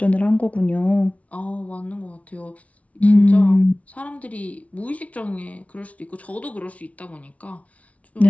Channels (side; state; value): right; late; 0.066 ms